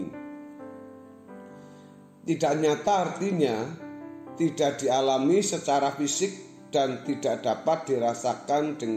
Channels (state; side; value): identical; both; correlation 1.00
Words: Tidak nyata artinya tidak dialami secara fisik dan tidak dapat dirasakan